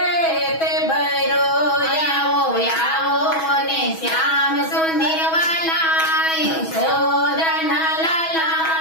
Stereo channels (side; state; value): right; late; 6.2 ms